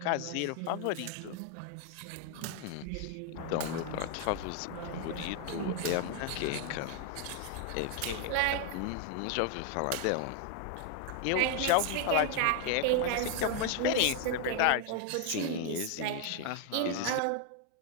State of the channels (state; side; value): different; both; correlation 0.00